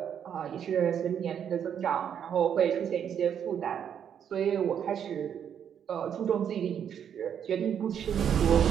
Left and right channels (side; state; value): left; quieter; 8.6 dB